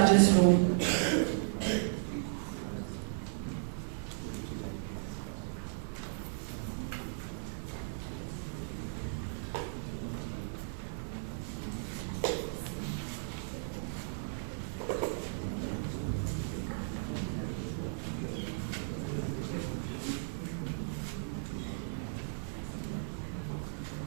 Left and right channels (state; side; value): silent; left; digital silence